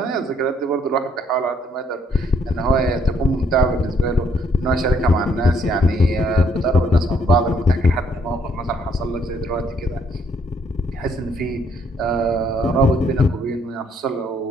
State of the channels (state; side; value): normal; both; correlation 0.68